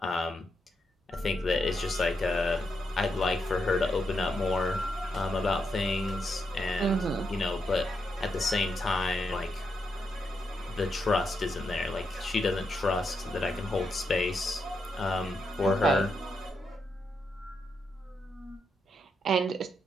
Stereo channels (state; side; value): normal; both; correlation 0.82